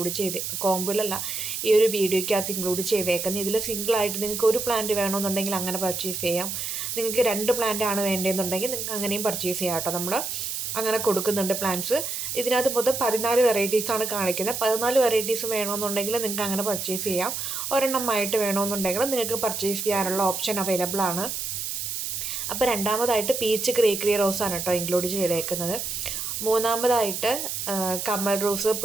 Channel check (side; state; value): right; noise; hiss, 4 dB below the sound